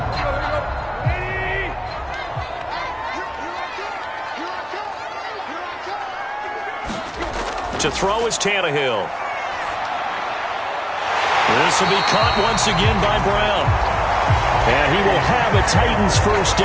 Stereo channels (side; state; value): both; identical; correlation 1.00